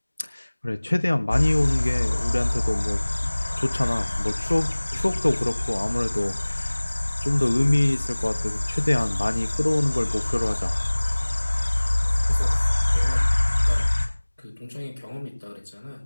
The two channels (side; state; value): both; inverted; correlation -1.00